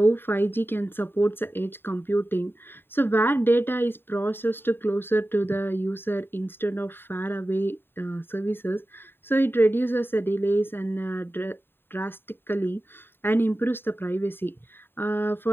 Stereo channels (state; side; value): late; right; 0.10 ms